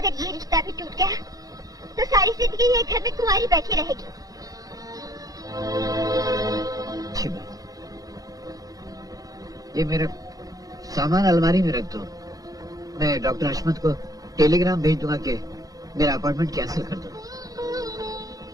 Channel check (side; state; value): left; late; 0.18 ms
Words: ये रिश्ता भी टूट गया तो सारी जिंदगी ये घर में कुंवारी बैठी रहेगी। अच्छी बात। ये मेरा सामान अलमारी में रख दो। मैं डॉक्टर हशमत को टेलीग्राम भेज दूंगा कि मेरा अपॉइंटमेंट कैंसिल कर दो।